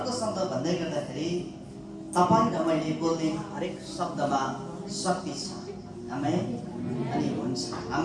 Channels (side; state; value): both; identical; correlation 1.00